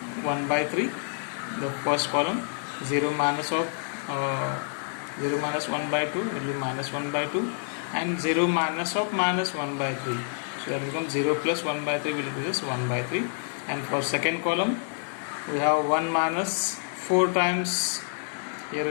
1 by 3. The first column 0 minus 1 by 2 will be minus 1 by 2, and 0 minus of minus 1 by 3. So that becomes 0 plus 1 by 3 will give us 1 by 3. And for second column we have 1 minus 4 times, here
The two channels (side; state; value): right; silent; 60 dB below the other